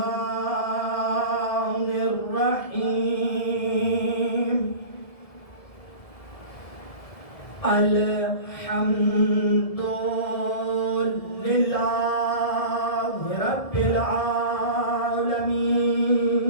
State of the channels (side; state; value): right; late; 1.7 ms